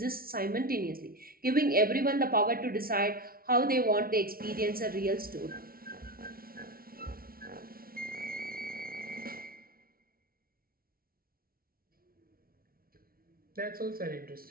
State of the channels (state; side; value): late; left; 0.43 ms